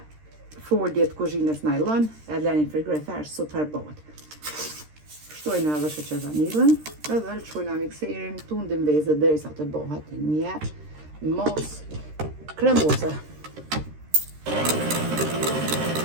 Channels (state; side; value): late; left; 13 ms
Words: folje të kuzhinës nylon, e lani në frigorifer super bëhet. Shtojna edhe sheqer vanilën, edhe lëshojna mikserin, tundim vezët derisa të bëhet një mos kremoze.